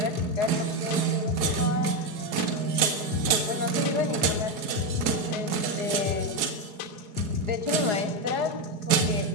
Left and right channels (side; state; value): left; late; 4.8 ms